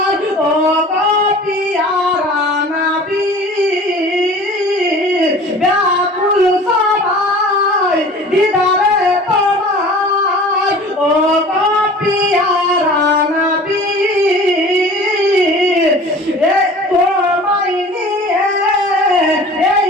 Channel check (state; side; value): normal; both; correlation 0.43